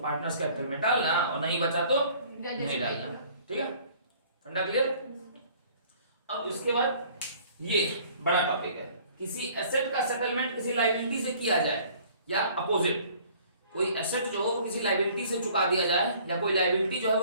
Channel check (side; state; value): both; inverted; correlation -0.54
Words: कैपिटल में डालना, और नहीं बचा तो नहीं डालना, ठीक है। फंडा क्लियर। अब इसके बाद ये बड़ा टॉपिक है, किसी एसेट का सेटलमेंट किसी लायबिलिटी से किया जाए या अपोजिट, कोई एसेट जो हो वो किसी लायबिलिटी से चुका दिया जाए या कोई लायबिलिटी जो है